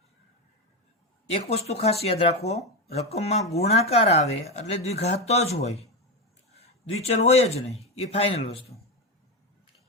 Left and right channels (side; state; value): both; normal; correlation 0.13